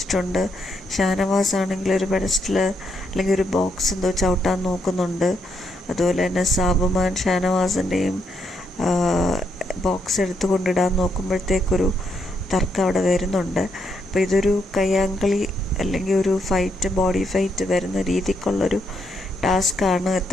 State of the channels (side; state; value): both; normal; correlation 0.77